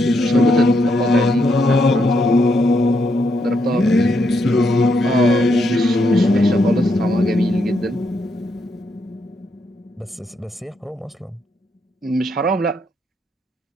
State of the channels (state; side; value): normal; both; correlation 0.78